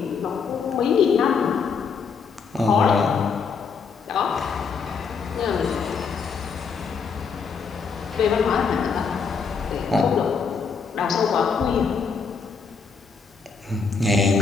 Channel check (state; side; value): quieter; right; 5.6 dB